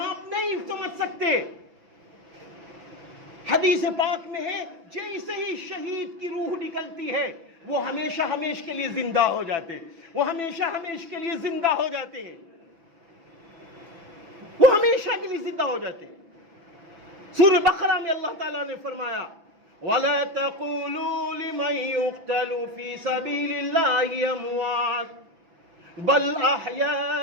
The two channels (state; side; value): late; left; 6.0 ms